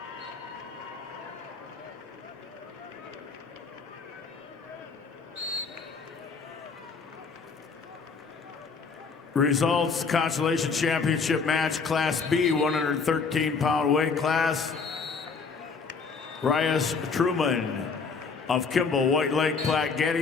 Results, Consolation Championship match, Class B, 113-pound weight class. Rias Truman of Kimball, White Lake, Platte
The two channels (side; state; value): right; quieter; 5.0 dB